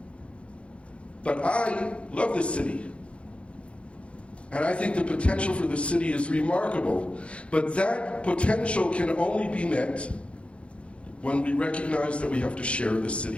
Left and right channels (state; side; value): late; right; 0.060 ms